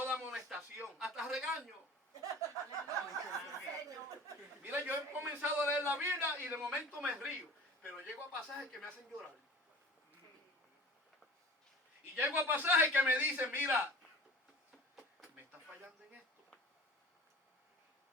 amonestación, hasta regaño. Mira, yo he comenzado a leer la Biblia y de momento me río, pero llego a pasajes que me hacen llorar. Y llego a pasajes que me dicen: mira, me está fallando en esto.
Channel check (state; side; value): normal; both; correlation 0.40